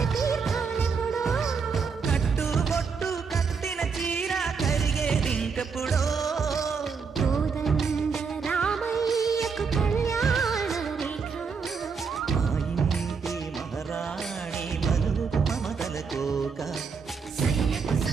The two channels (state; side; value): quieter; left; 5.5 dB